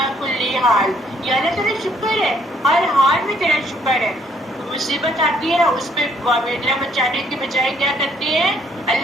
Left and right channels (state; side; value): normal; both; correlation 0.65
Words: کل حال. یا اللہ تیرا شکر ہے، ہر حال میں تیرا شکر ہے. مصیبت آتی ہے اس پہ واویلا مچانے کی بجائے کیا کرتے ہیں؟